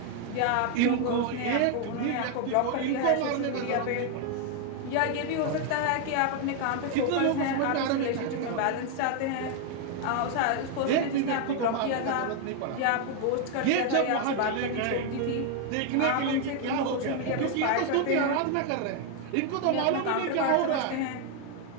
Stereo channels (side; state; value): both; different; correlation 0.00